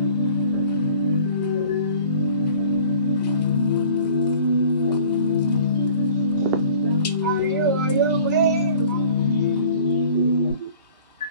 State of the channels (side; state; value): both; inverted; correlation -0.49